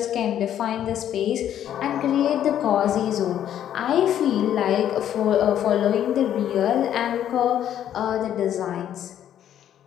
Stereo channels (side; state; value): right; quieter; 10.5 dB